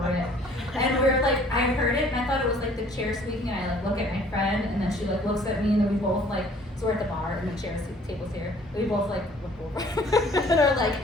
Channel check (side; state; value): both; normal; correlation 0.55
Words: And we're like, I heard it and I thought it was like the chair squeaking, and I like look at my friend and then she like looks at me, and then we both like, so we're at the bar and the table's here. We both like look over and are like,